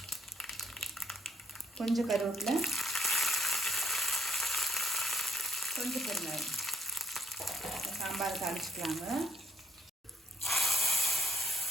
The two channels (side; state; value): both; normal; correlation 0.69